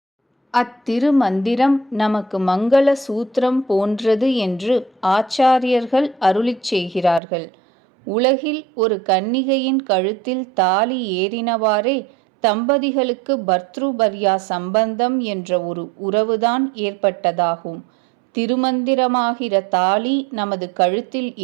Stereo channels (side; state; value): left; drops out; at 7.2 s